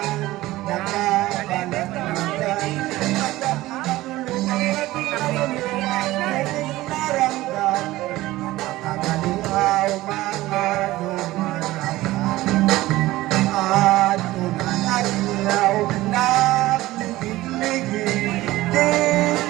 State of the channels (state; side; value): quieter; left; 17.3 dB